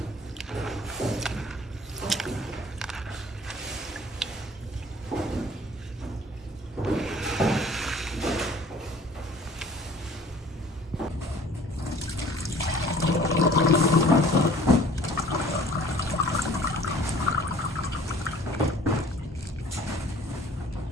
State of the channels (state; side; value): normal; both; correlation 0.50